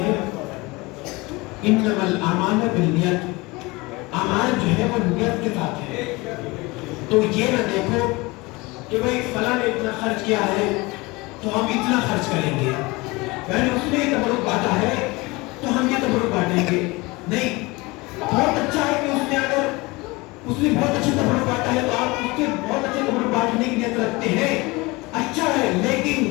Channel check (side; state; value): right; quieter; 23.6 dB